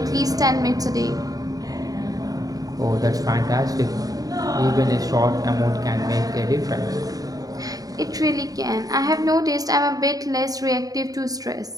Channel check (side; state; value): left; late; 0.18 ms